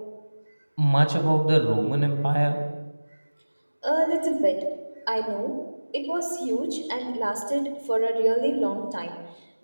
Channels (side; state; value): both; inverted; correlation -1.00